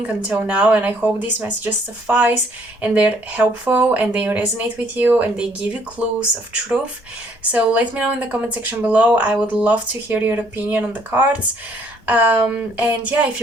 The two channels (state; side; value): normal; both; correlation 0.65